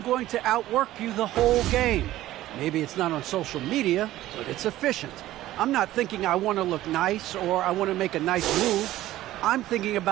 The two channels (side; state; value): left; quieter; 14.9 dB